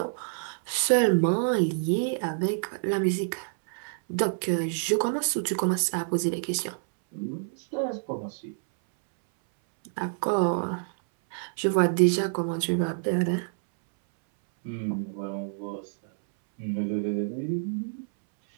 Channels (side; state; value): left; silent; 60 dB below the other